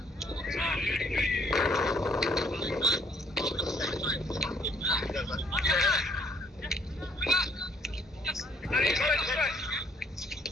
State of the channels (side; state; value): both; normal; correlation 0.63